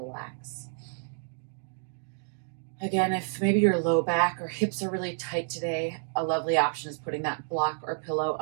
Again, if maybe your low back or hips are really tight today, a lovely option is putting that block or pillow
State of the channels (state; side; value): silent; left; 58 dB below the other